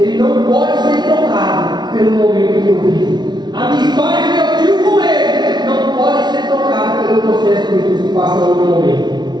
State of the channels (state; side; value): late; left; 0.20 ms